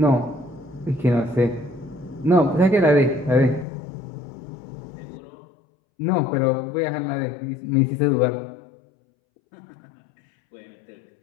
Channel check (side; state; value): right; drops out; at 3.7 s